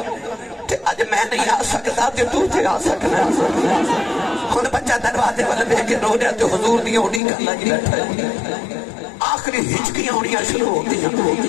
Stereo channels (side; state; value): right; drops out; at 7.2 s